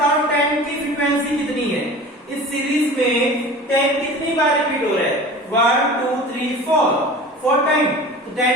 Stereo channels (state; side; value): normal; both; correlation 0.38